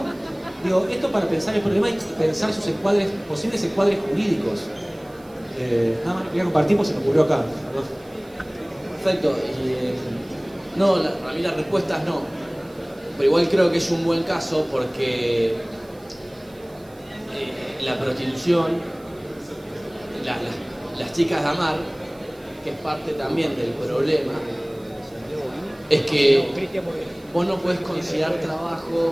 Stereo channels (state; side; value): noise; right; hiss, 28 dB below the sound